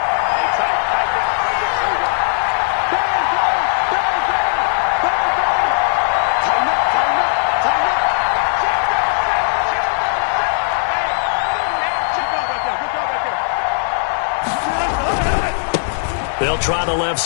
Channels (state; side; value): silent; right; digital silence